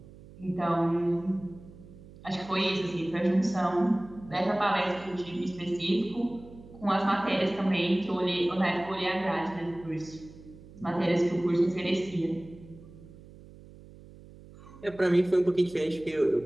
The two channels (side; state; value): right; noise; hum, 20 dB below the sound